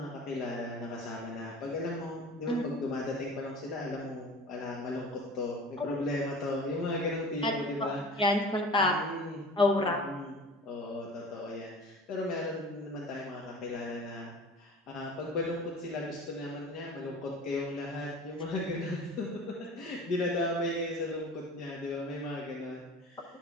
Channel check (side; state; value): both; normal; correlation 0.40